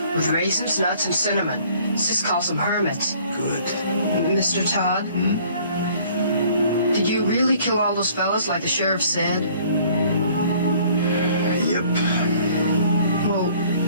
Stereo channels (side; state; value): both; inverted; correlation -0.56